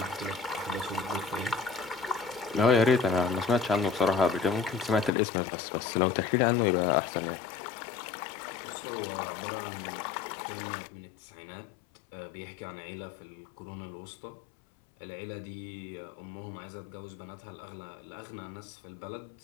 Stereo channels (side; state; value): right; drops out; at 5.1 s